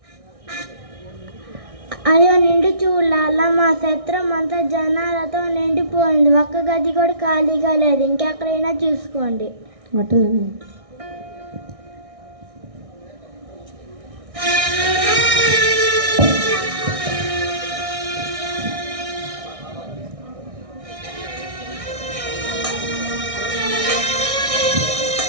అయ్యో నిండు చూడాల, మా సత్రం అంతా జనాలతో నిండిపోయింది. ఒక్క గది కూడా ఖాళీగా లేదు. ఇంకెక్కడైనా చూసుకోండి. అట్లనే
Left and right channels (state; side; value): late; left; 1.6 ms